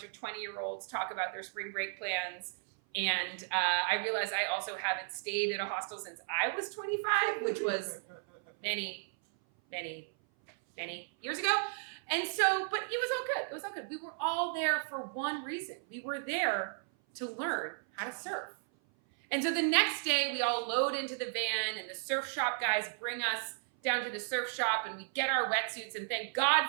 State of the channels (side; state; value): left; silent; 55 dB below the other